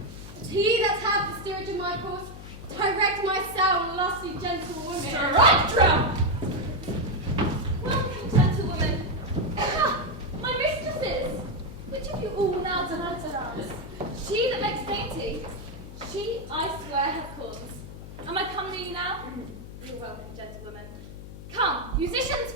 But he that hath the steerage of my course, direct my soul, lusty gentle woman. Strike drum! Welcome, gentlewoman. Ah, my mistresses! Which of you all now delights us? She that makes dainty, she, I swear, hath cause. Am I come to you now? You're welcome, gentlewoman. Come, musicians,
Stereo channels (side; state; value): left; noise; hum, 13 dB below the sound